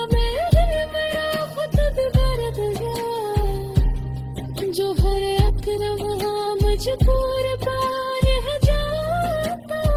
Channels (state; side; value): identical; both; correlation 1.00